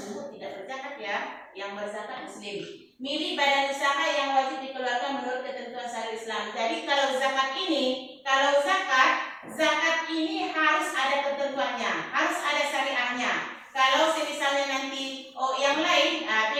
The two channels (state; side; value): identical; both; correlation 1.00